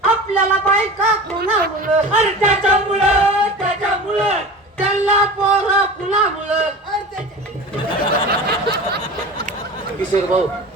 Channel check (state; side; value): normal; both; correlation 0.34